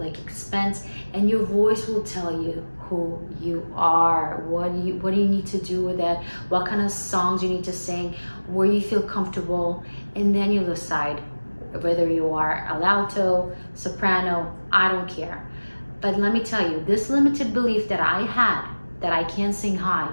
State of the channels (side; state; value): both; inverted; correlation -1.00